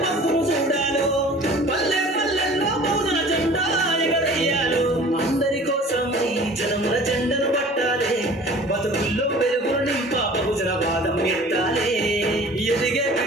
పత్తును చూడాలి పల్లె పల్లెల్లో బహుజన జెండా ఎగరేయాలి అందరి కోసం ఈ జనముల జెండను పట్టాలి బతుకుల్లో వెలుగులు నింప బహుజన వాదం ఎత్తాలి ఎదిగే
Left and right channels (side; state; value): both; normal; correlation 0.46